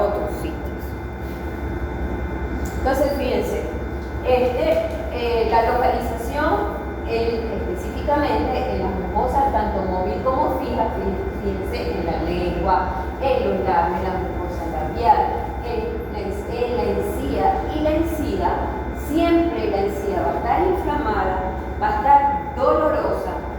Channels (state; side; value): identical; both; correlation 1.00